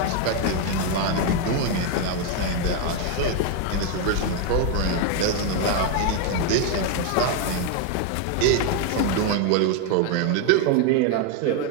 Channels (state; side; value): different; both; correlation 0.01